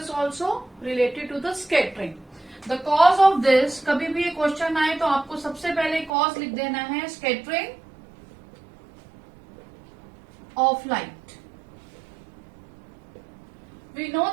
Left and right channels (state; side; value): drops out; left; at 6.1 s